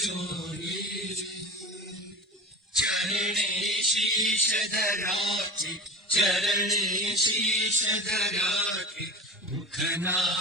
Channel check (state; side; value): normal; both; correlation 0.31